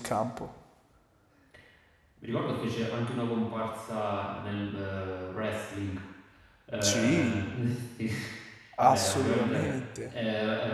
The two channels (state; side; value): identical; both; correlation 1.00